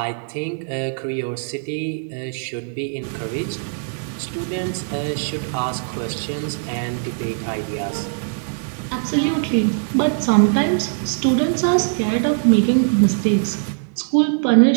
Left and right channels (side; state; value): left; silent; 65 dB below the other